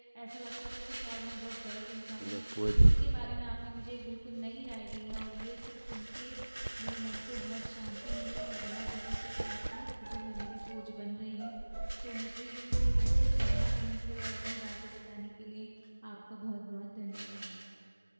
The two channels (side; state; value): both; inverted; correlation -1.00